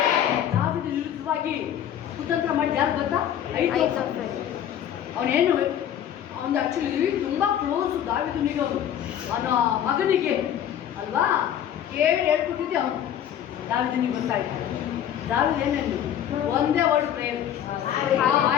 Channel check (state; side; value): quieter; right; 10.2 dB